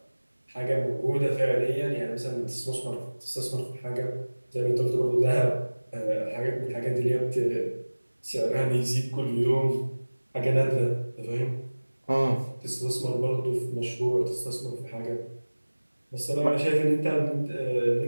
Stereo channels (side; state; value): both; inverted; correlation -1.00